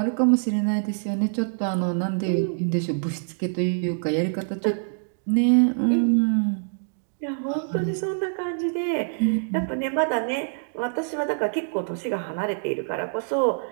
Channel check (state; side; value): silent; left; digital silence